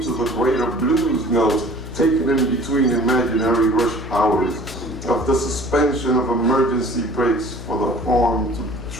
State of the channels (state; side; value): noise; left; hum, 11 dB below the sound